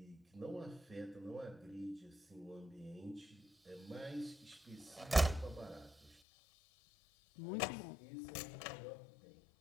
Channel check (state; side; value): drops out; right; at 6.2 s